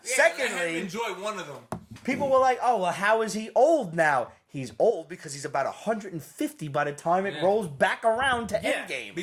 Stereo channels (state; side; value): identical; both; correlation 1.00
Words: Secondly- let him enjoy one of them. People were like, oh, well, how is he old now? He's old because he's about 150 by the time it Yeah. rolls back around to Yeah. Endgame.